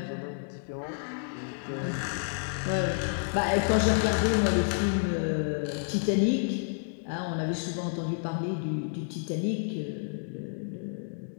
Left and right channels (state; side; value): silent; right; digital silence